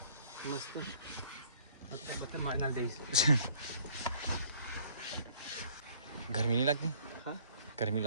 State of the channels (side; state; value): both; inverted; correlation -0.56